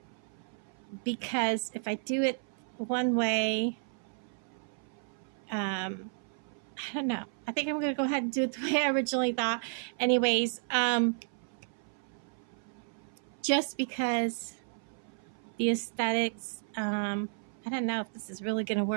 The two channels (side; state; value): left; silent; 56 dB below the other